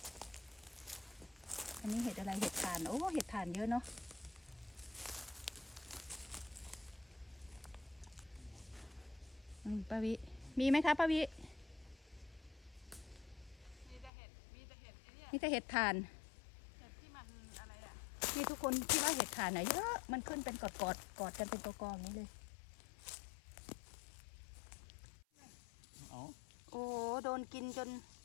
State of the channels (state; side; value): drops out; right; at 14.1 s